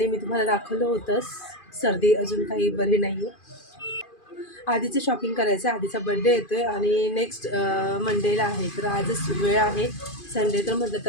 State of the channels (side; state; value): right; late; 2.5 ms